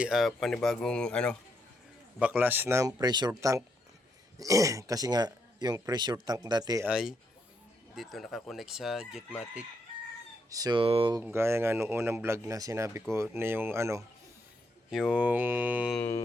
panibagong baklas ng pressure tank. Kasi nga yung pressure tank dati ay dito nakakonect sa Jetmatic. So gaya nga nung unang vlog na sinabi ko na yung yung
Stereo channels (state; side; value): normal; both; correlation 0.78